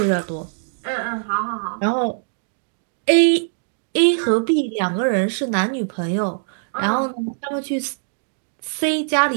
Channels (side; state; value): left; silent; digital silence